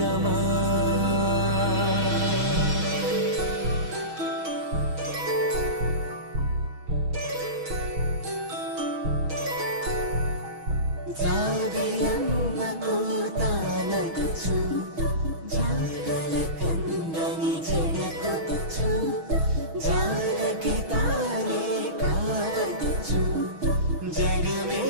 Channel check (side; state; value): left; late; 6.2 ms